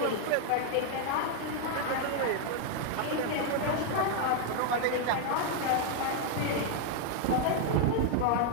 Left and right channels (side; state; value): both; different; correlation 0.00